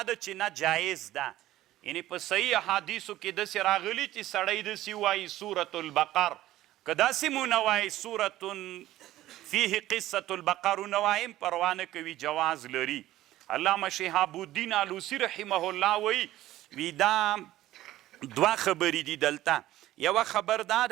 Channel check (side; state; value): left; quieter; 14.9 dB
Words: چې نه جایز ده. یعنی په صحیح حدیثو کې دسی راغلی چې سړی دسی وای سورة البقر، که داسی مو نوای سورة فیه قصة البقر نوایم پروانه کوي جواز لري. علامه شهاب الدین علوسی رحمه الله وی دا دوه خبرې دي دلته. یوه خبر دا